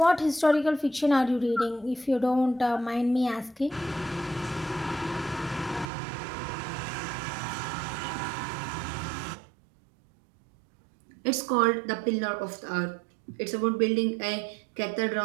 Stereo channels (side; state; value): left; drops out; at 5.9 s